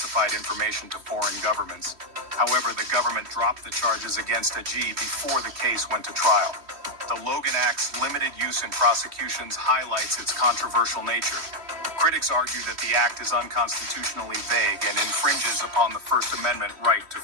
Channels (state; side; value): late; left; 3.1 ms